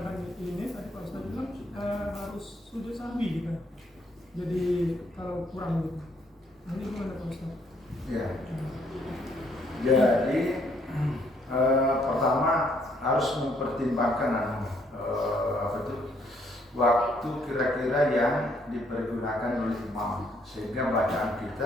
ini tadi Pak Ustaz bilang harus sujud sahwi, gitu. Jadi kalau kurang gitu. Nanti gimana Pak Ustaz? Ya. Jadi pertama harus mempertimbangkan waktu kira-kira yang dipergunakan oleh imam, sehingga bacaan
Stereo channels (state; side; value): normal; both; correlation 0.68